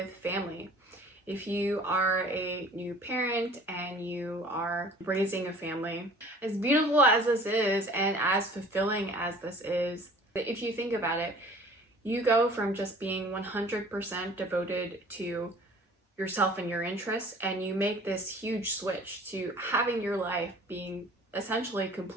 family. If you are a new parent and you are raising a family, as beautiful as this is and as fulfilling as this is, if you think about it, you go from just being 100% devoted to yourself and your interests, and you make this huge switch to having your life being essentially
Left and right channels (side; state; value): both; normal; correlation 0.49